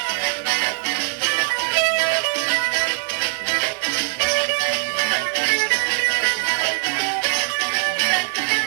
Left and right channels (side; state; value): left; silent; 65 dB below the other